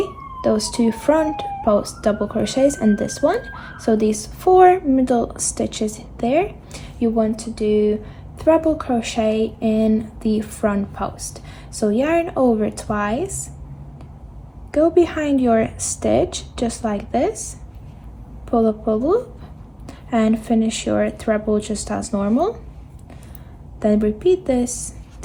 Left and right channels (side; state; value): both; identical; correlation 1.00